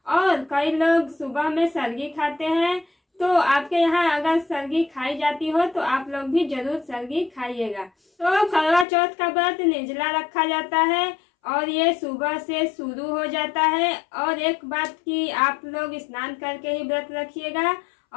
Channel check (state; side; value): drops out; right; at 8.8 s